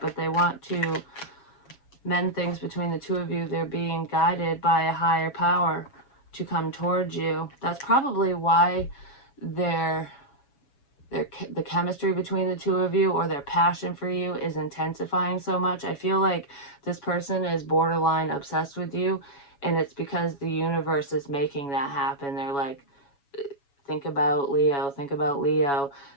they want to mend things between the two of you. They're being guided by a higher power to come towards you. That's probably why the chemistry between the two of you, or their passion for you, is intensifying so much. I feel like this person is borderline obsessed with you, and it's because the universe is making that happen. They're like, think about Leo, think about Leo.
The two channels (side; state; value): right; late; 7.2 ms